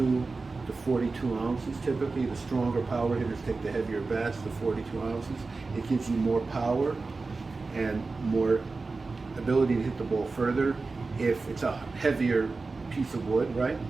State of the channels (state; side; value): quieter; left; 3.9 dB